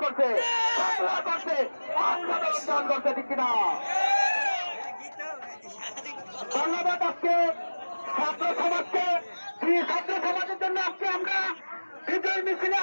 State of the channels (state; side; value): inverted; both; correlation -1.00